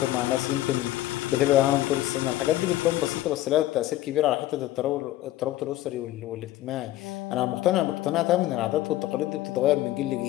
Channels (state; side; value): quieter; right; 15.3 dB